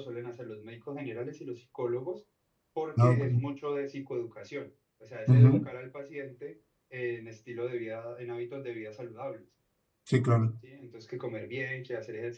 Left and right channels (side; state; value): both; identical; correlation 1.00